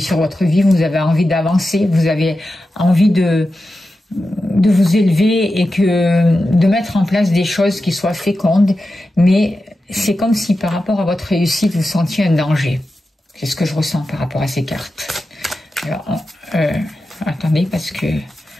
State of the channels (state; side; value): normal; both; correlation 0.91